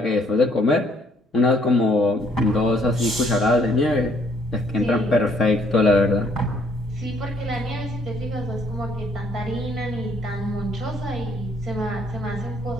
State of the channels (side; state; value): both; normal; correlation 0.65